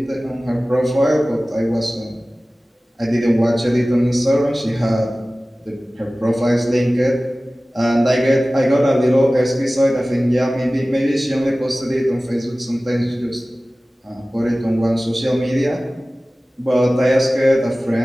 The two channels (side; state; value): both; normal; correlation 0.97